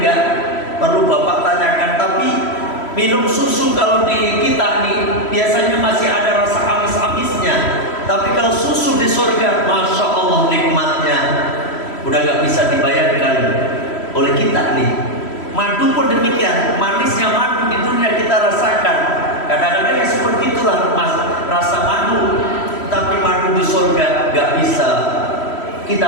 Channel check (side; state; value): right; late; 3.1 ms